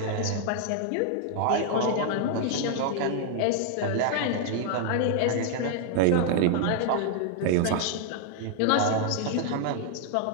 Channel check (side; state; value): both; different; correlation 0.00